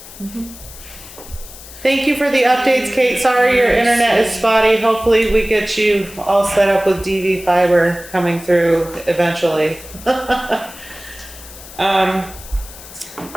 Thank you for the updates, Kate. Sorry your internet is spotty. Hopefully we get you all set up with DV fiber coming through eventually.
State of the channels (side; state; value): left; noise; hiss, 17 dB below the sound